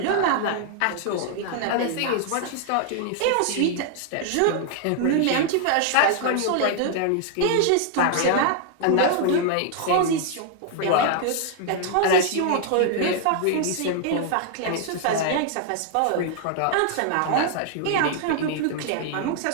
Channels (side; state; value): both; different; correlation 0.00